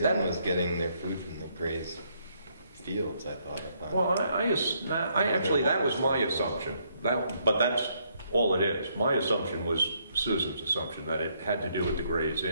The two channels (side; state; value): both; inverted; correlation -0.72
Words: Inn was getting their food from the Gray's fields, I thought. Well, I actually, that was my assumption. But that's all it is. My assumption was Susan's assumption, that it had to do with the Gray's